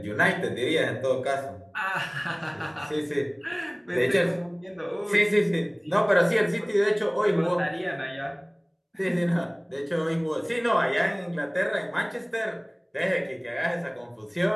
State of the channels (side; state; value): both; identical; correlation 1.00